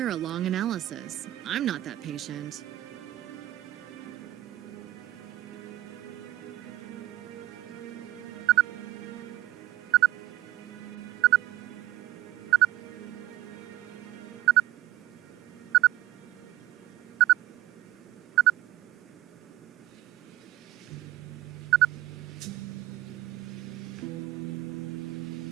a long analysis. I'm not that patient.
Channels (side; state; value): left; quieter; 14.8 dB